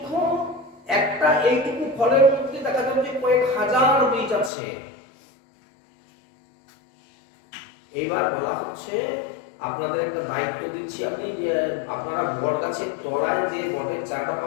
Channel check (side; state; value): right; drops out; at 4.5 s